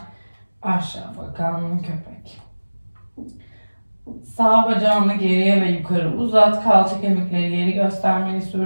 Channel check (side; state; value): both; inverted; correlation -1.00